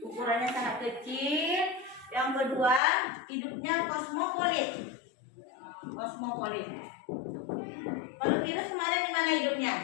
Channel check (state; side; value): drops out; right; at 2.8 s